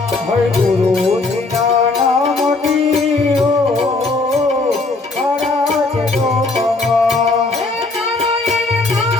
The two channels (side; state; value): right; quieter; 3.5 dB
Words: हरे गुरुजी ना नामनी हो मारा छे डोकमा।